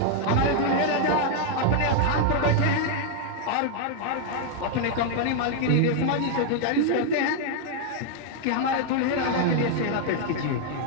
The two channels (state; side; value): different; both; correlation 0.00